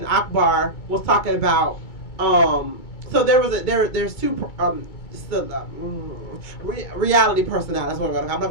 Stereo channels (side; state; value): right; late; 2.3 ms